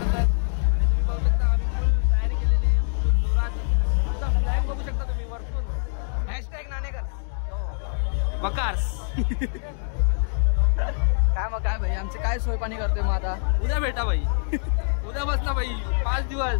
तुम्ही वरतून हॅशटॅग नाणेकर्स बकार्स. काय मग काय भाई, आमचे काय सोय पाणी करतोय मग आता? उद्या भेटा भाई, उद्या बसला भाई 5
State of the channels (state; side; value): silent; right; digital silence